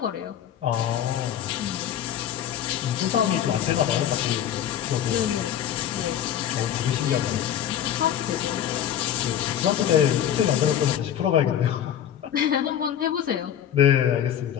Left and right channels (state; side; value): quieter; right; 10.1 dB